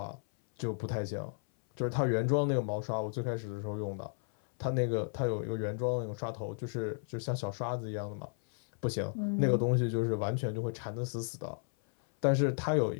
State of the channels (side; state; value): right; silent; 55 dB below the other